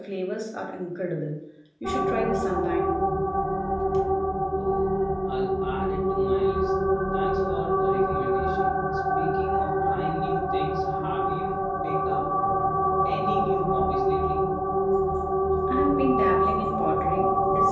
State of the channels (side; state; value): both; identical; correlation 1.00